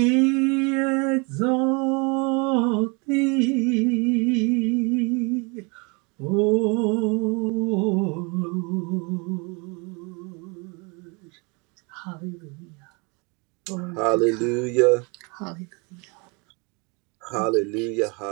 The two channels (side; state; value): left; quieter; 30.8 dB